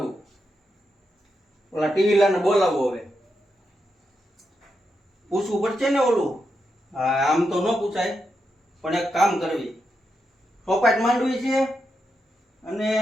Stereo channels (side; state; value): both; normal; correlation 0.85